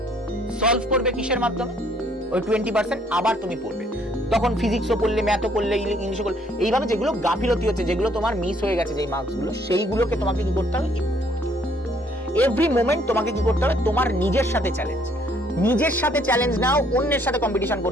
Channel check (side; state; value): both; normal; correlation 0.64